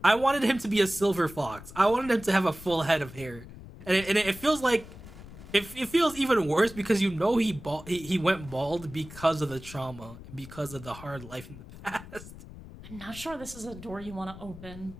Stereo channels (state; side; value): noise; left; rumble, 16 dB below the sound